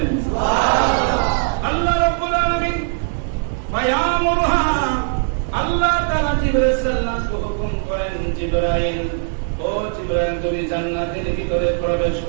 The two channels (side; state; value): left; silent; digital silence